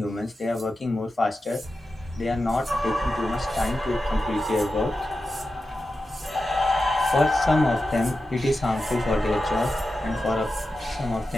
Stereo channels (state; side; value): normal; both; correlation 0.91